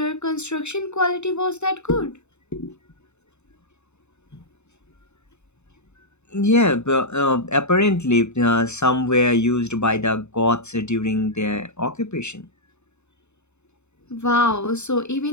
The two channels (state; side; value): late; right; 0.82 ms